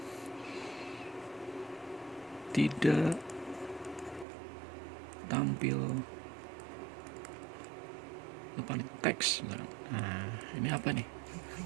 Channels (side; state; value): left; drops out; at 4.2 s